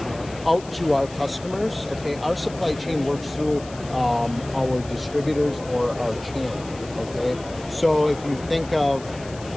out to our customers, okay, our supply chain works through our distributors or our channel, okay? So if you think of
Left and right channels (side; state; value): left; noise; hiss, 18 dB below the sound